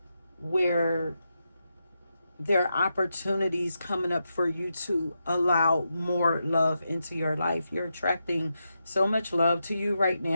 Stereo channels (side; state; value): both; inverted; correlation -0.86